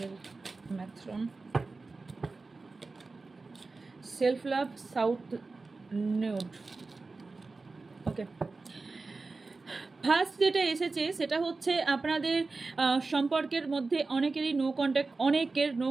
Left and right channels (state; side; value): quieter; left; 3.8 dB